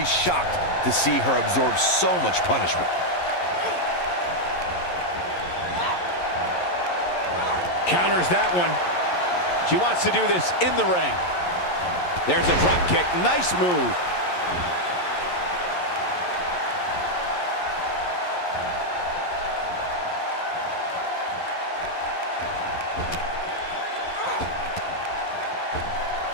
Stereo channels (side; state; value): right; late; 11 ms